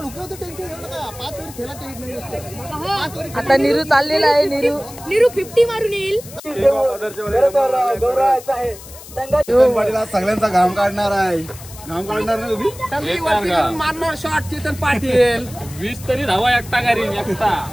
नीरू चाललेला आहे. नीरू 50 मारून येईल. सगळ्यांचा घाम काढणार आहे. घाम काढणार ना मारणार शॉट चेतन पाटील 20 तरी धावा एकटा घरी एकटा.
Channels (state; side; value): noise; left; hiss, 17 dB below the sound